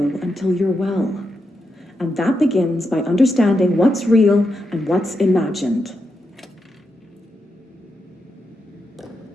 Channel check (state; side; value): normal; both; correlation 0.85